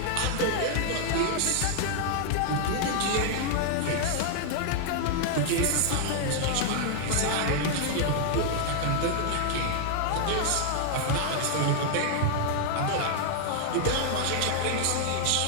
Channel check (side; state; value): both; different; correlation 0.00